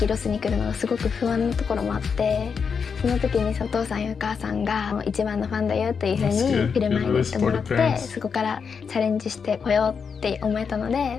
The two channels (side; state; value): right; quieter; 6.1 dB